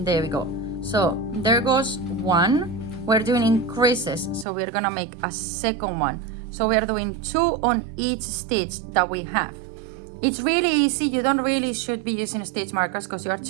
there we go. So there goes one. We're doing increases, so we're gonna make a second one. So we're doing 2 on each stitch that we have. It's really easy. You don't really should be using stitch markers because you are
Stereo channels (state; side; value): drops out; left; at 4.5 s